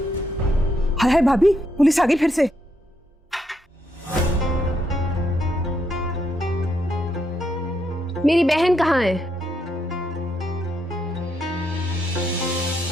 हाय हाय भाभी, पुलिस आ गई फिर से। मेरी बहन कहाँ है?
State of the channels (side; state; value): both; normal; correlation 0.78